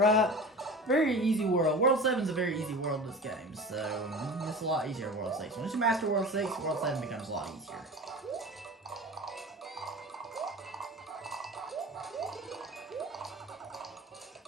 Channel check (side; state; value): both; normal; correlation 0.35